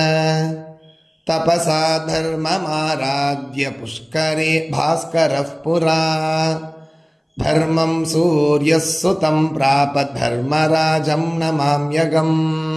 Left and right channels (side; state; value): both; identical; correlation 1.00